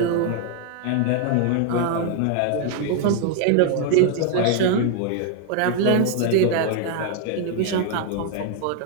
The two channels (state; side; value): different; both; correlation 0.01